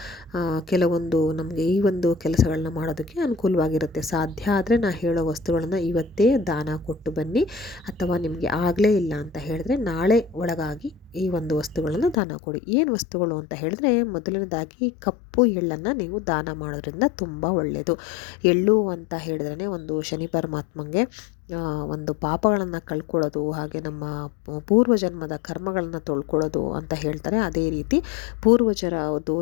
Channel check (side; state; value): right; drops out; at 12.2 s